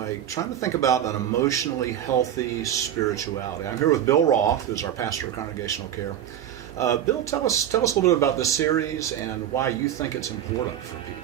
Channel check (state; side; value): quieter; left; 10.5 dB